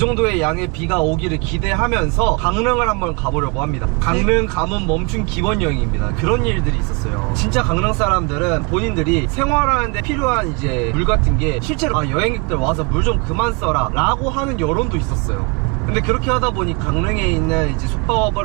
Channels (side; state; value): left; quieter; 30.3 dB